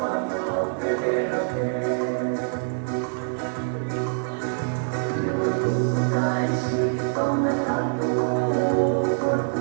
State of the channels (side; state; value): left; silent; digital silence